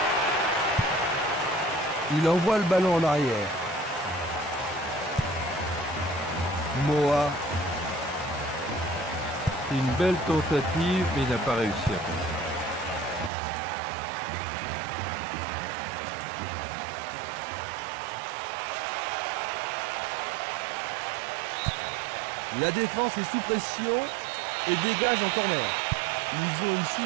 Il envoie le ballon en arrière. Moa. C'est une belle tentative, mais il n'a pas réussi à passer. La défense est sous pression et dégage en corner. Ils ont ici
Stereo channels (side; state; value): left; drops out; at 13.3 s